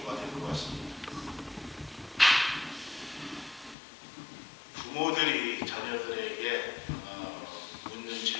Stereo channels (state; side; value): drops out; right; at 3.8 s